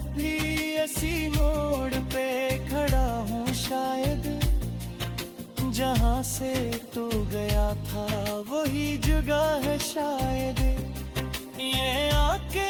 भी ऐसी मोड़ पे खड़ा हूँ शायद, जहाँ से तू गया था वही जगह है शायद। ये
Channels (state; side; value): identical; both; correlation 1.00